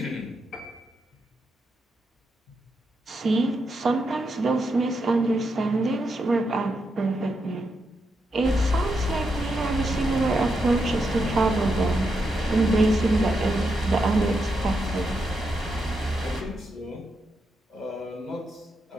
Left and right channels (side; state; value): both; normal; correlation 0.84